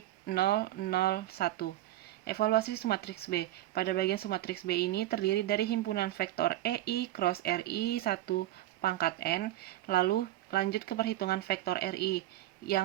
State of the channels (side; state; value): left; quieter; 14.7 dB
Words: 0, 0, 1. Evaluasi sumatriks B. Pada bagian sumatriks B ini terdiri dari himpunan vektor EI cross RI 1 pangkat N, lalu lanjut ke perhitungan vektor RI